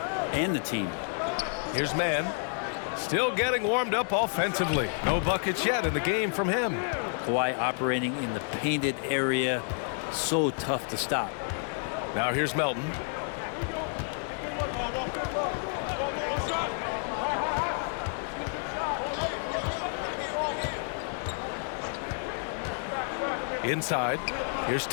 and the team. Here's Mann. Still getting warmed up offensively. No buckets yet in the game from him. Kawhi operating in the painted area. So tough to stop. Now here's Melton. Inside. Here's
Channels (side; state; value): right; silent; 57 dB below the other